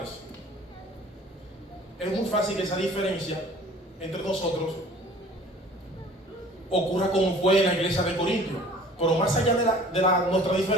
Es muy fácil que esa diferencia entre nosotros ocurra como fue en la iglesia de Corintio. Pero más allá de nuestra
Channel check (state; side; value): normal; both; correlation 0.49